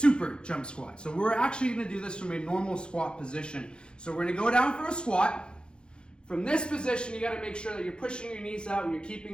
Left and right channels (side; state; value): right; late; 0.051 ms